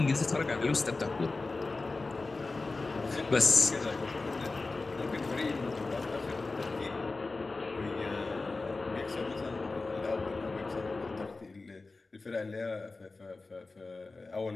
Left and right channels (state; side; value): quieter; right; 3.6 dB